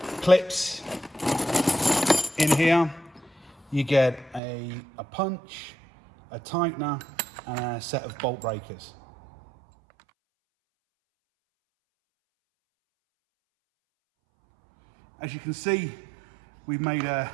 clips in here. You get a punch, a tightener, and a set of bolt breakers. As you can see, we've made a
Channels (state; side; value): drops out; left; at 4.4 s